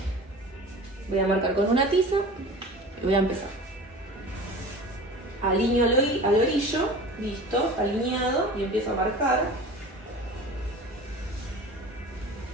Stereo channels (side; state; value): both; normal; correlation 0.38